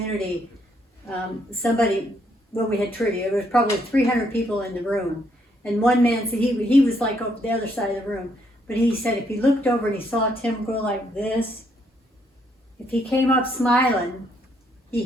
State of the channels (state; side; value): normal; both; correlation 0.72